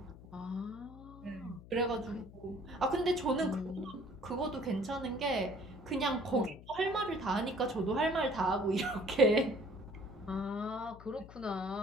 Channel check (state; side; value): noise; left; hum, 18 dB below the sound